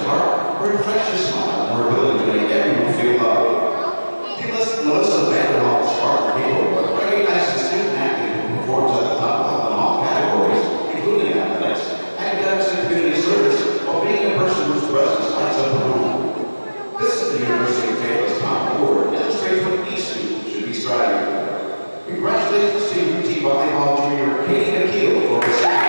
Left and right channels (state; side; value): inverted; both; correlation -1.00